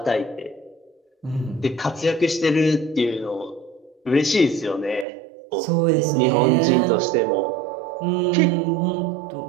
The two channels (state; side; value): drops out; left; at 5.1 s